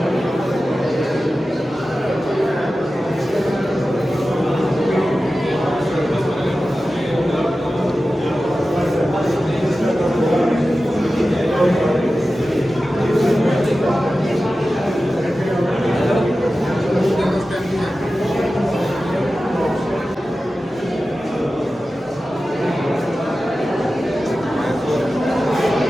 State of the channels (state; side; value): normal; both; correlation 0.94